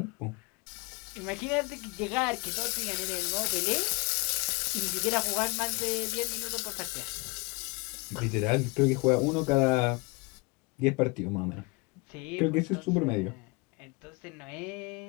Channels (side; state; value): right; quieter; 27.9 dB